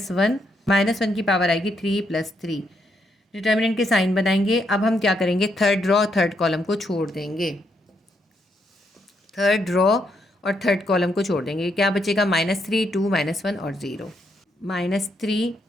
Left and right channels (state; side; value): normal; both; correlation 0.77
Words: की पावर आएगी 3 + 3। डिटर्मिनेंट के साइन बनाएंगे। अब हम क्या करेंगे, थर्ड रो थर्ड कॉलम को छोड़ देंगे। थर्ड रो और थर्ड कॉलम को छोड़ देंगे। क्या बचेगा? -3 2 -1 और 0, -3